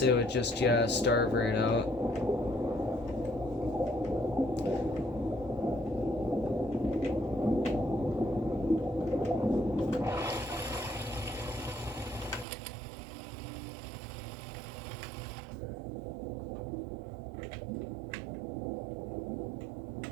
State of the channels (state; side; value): drops out; left; at 12.5 s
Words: it would just, yeah, starve right out.